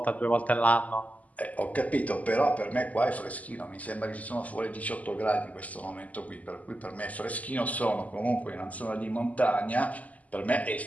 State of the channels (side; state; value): right; late; 0.075 ms